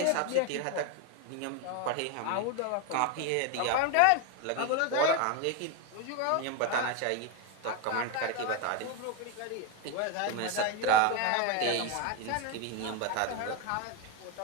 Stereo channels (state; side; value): different; both; correlation 0.02